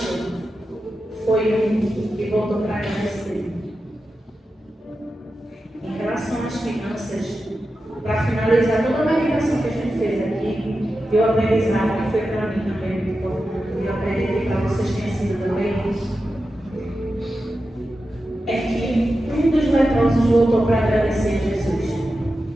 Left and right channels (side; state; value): both; normal; correlation 0.91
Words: foi um que voltou para agradecer. Em relação às finanças, para finalizar toda a meditação que a gente fez aqui, eu aprendizado que foi para mim também muito importante, e eu acredito que para vocês tenha sido também, é que um dos leprosos voltou para agradecer a Jesus.